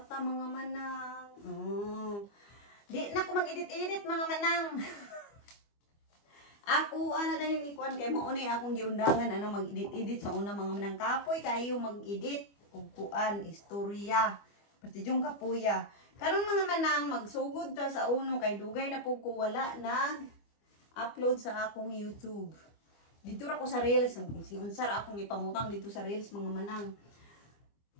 mga manang. Di na ko mag-edit-edit mga manang. Ako ana dahil ni kuan kay mao ni akong giundangan ana mag-edit-edit sa una mga manang kapoy kayo mag-edit ug kuan istorya. Partijong kapuya. Karon mga manang magsugod ta sa uno kay dugay na pug ko wala nag-upload sa akong YouTube. Dito ra ko sa Reels, si unsa ra akong ipamutang dito sa Reels mga manang.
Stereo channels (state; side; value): late; right; 25 ms